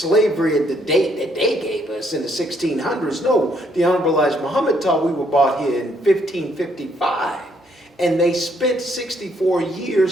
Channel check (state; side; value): normal; both; correlation 0.70